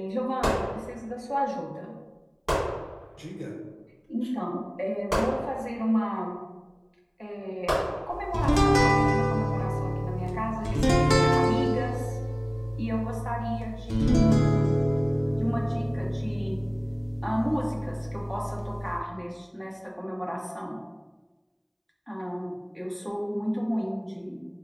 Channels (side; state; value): both; identical; correlation 1.00